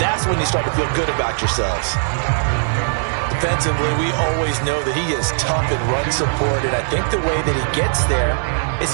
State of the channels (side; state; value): left; silent; digital silence